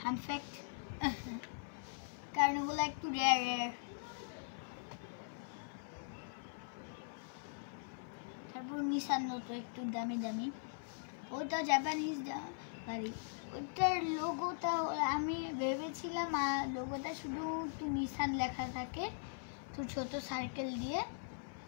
আনফ্যাক্ট, কারণ ওগুলো একটু রেয়ার। তারপর নিসান নতো একটু দামি, ওটা জাপানিজ গাড়ি। ওটার লোগোটা আমি ভেবেছিলাম লোগোটা শুধু নিসান লেখা থাকে তো ছোট সার্কেল দিয়ে,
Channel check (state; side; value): silent; right; 51 dB below the other